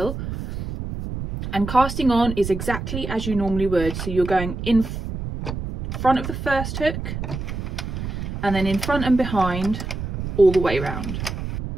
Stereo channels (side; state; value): right; noise; rumble, 6 dB below the sound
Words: And casting on is exactly as you normally would. So you're going in front of the first hook and then in front and behind all the way around.